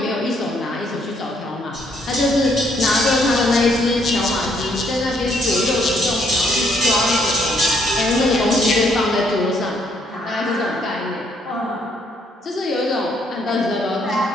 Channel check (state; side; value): normal; both; correlation 0.69